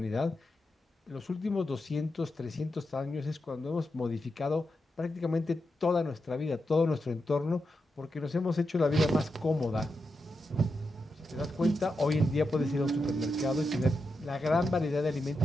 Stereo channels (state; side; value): normal; both; correlation 0.87